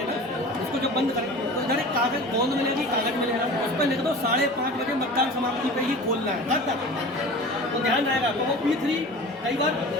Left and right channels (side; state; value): both; normal; correlation 0.38